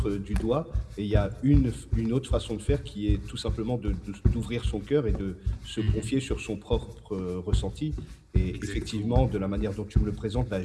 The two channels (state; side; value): identical; both; correlation 1.00